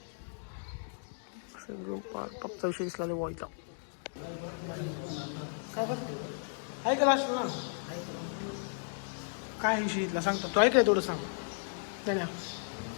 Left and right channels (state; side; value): silent; right; digital silence